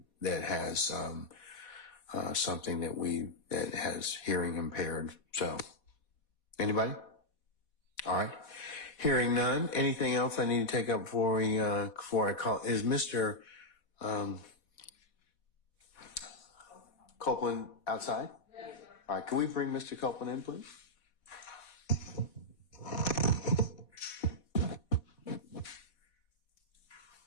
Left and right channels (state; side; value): late; right; 4.2 ms